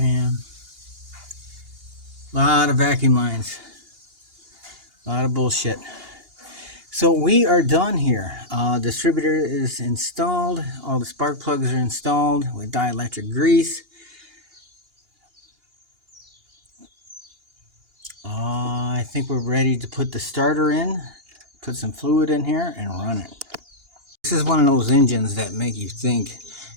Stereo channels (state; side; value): late; left; 2.8 ms